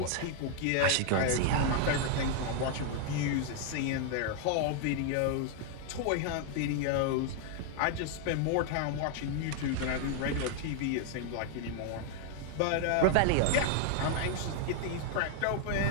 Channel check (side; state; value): both; different; correlation 0.00